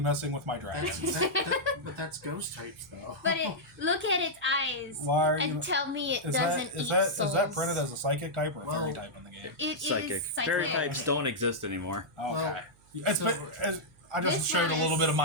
messing with my That's, dragon? but that's ghost types, though. But look at its eyes Why are you? and tell me it Is doesn't that, is eat that souls. is that printed as a psychic type or a fairy Well, type in the game? It is Psychic. psychic. Fairy types don't exist anymore. Okay. It's so- I just This showed one a little is- bit of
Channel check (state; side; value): noise; right; hum, 30 dB below the sound